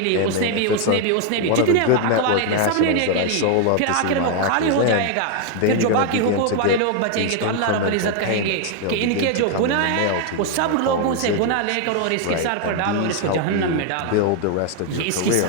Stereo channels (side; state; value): both; different; correlation 0.00